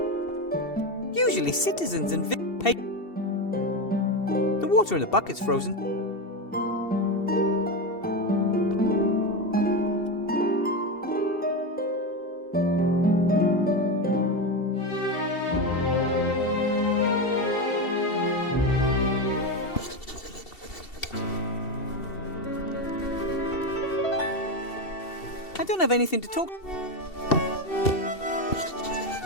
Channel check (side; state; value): right; late; 2.7 ms